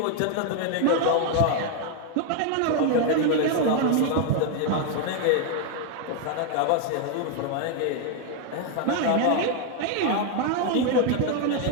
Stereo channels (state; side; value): different; both; correlation 0.00